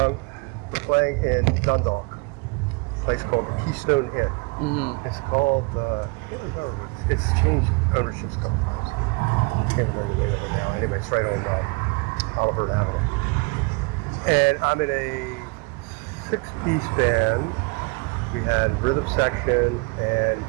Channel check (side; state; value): left; quieter; 29.6 dB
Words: We're playing in Dundalk, a place called the Keystone Inn. Mm-hmm. It's called. I can't remember. It's changed ownerships a couple times. I can't remember the name of it now. Anyway, it's right on Oliver Avenue. And I'm in a 6-piece band. We had a rhythm section and